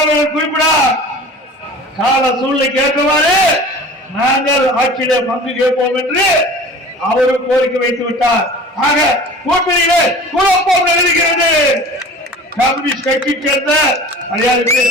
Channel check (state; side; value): normal; both; correlation 0.40